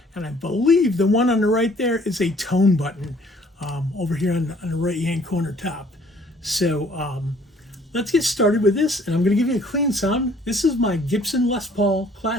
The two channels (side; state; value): both; normal; correlation 0.58